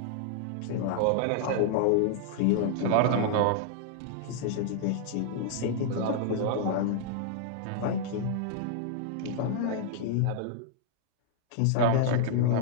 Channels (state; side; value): different; both; correlation -0.01